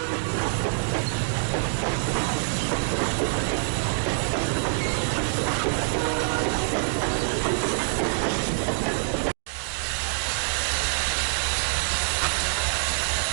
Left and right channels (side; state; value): left; silent; digital silence